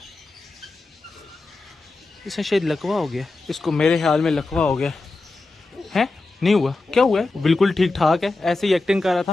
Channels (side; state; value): right; quieter; 3.3 dB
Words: इसे शायद लकवा हो गया, इसको मेरे ख्याल में लकवा हो गया है। नहीं हुआ, क्या हुआ है? बिल्कुल ठीक ठाक है, ऐसे ही एक्टिंग कर रहा